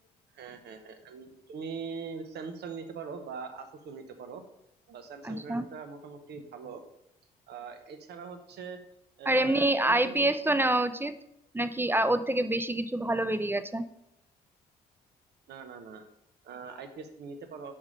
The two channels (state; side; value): normal; both; correlation 0.61